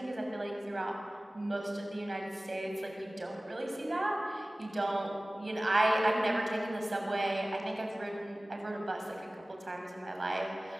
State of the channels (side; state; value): both; normal; correlation 0.98